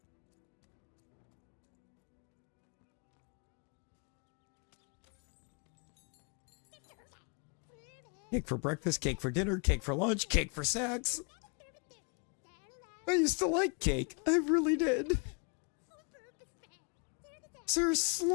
Cake for breakfast, cake for dinner, cake for lunch, cake for snacks. I used to like cake. I really did. Sir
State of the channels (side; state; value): right; quieter; 36.6 dB